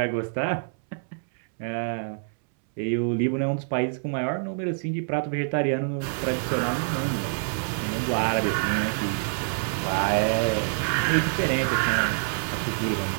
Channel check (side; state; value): left; silent; 60 dB below the other